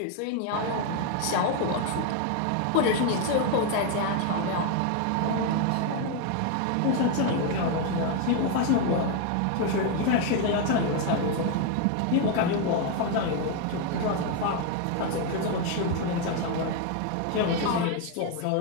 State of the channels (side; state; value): both; different; correlation 0.01